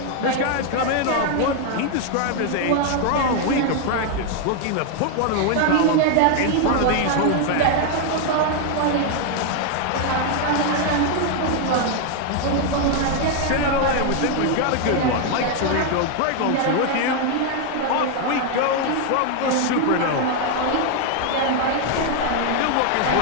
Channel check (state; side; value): different; both; correlation 0.00